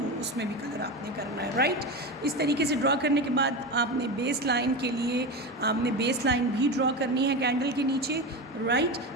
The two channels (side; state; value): both; normal; correlation 0.22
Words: उसमें भी कलर आपने करना है, राइट। इस तरीके से ड्रॉ करने के बाद आपने बेस लाइन के लिए आपने बेस लाइन भी ड्रॉ करनी है कैंडल के नीचे, राइट।